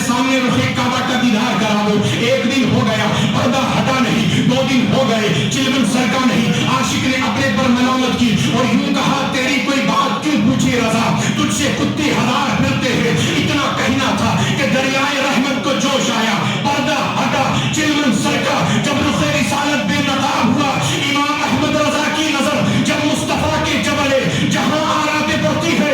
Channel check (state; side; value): identical; both; correlation 1.00